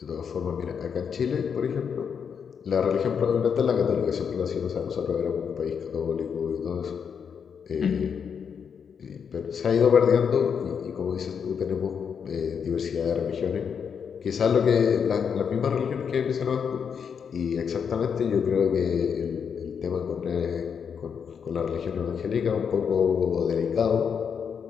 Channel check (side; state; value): right; quieter; 6.9 dB